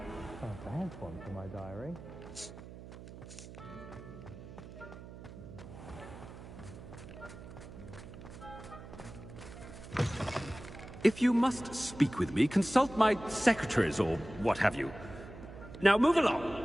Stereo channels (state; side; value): noise; right; hum, 14 dB below the sound